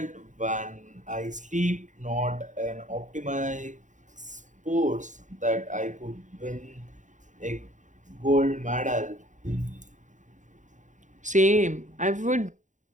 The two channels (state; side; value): late; left; 0.36 ms